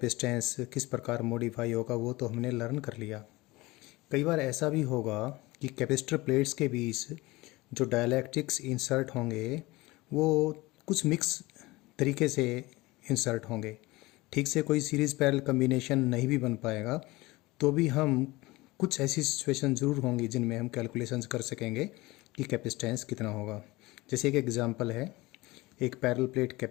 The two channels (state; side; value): quieter; right; 21.0 dB